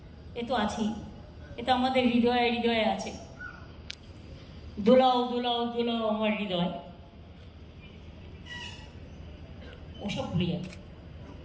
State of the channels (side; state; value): both; identical; correlation 1.00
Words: এ তো আছেই, এ তো আমাদের হৃদয়ে হৃদয়ে আছে। দোলাও দোলাও দোলাও আমার হৃদয়, ওসব ভুলে যাবে।